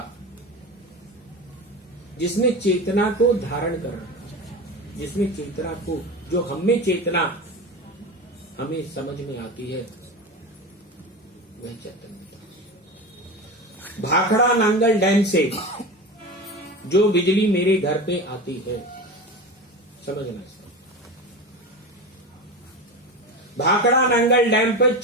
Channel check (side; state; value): both; normal; correlation 0.26